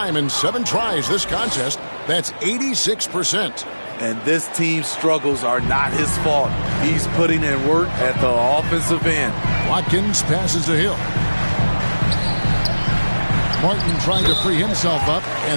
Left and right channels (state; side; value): inverted; both; correlation -1.00